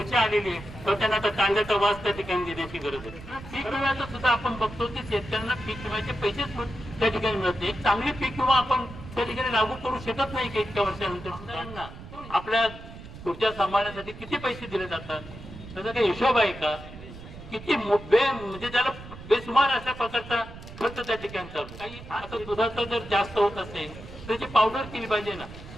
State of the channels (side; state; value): right; noise; rumble, 14 dB below the sound